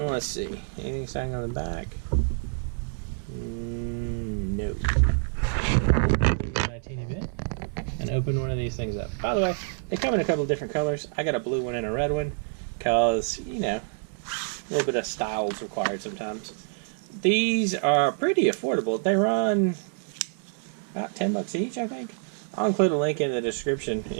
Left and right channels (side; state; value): left; silent; digital silence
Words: let's see. Anything saying on the back? No. A teeny bit. And open one of these things up. By the way, they come in a couple of different colors. I got a blue one and a red one because, you know, a little bit of style is required sometimes. These are pretty affordable. They run about 10 bucks each, I think. I'll include a link in the description